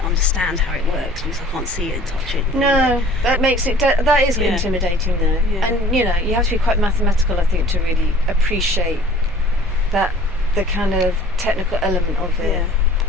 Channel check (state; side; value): normal; both; correlation 0.50